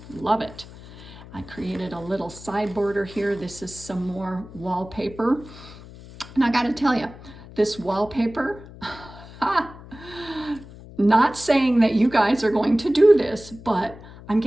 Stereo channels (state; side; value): noise; left; hum, 17 dB below the sound